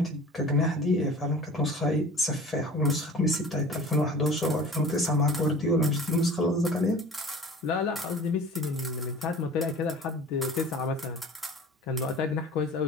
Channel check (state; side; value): normal; both; correlation 0.41